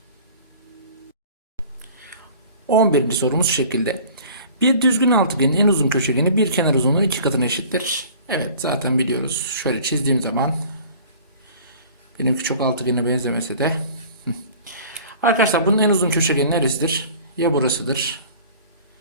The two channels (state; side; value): inverted; both; correlation -0.46